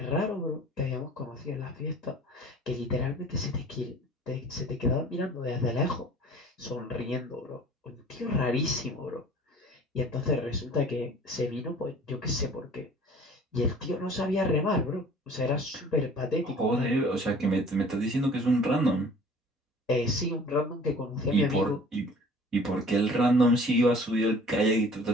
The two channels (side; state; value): both; normal; correlation 0.48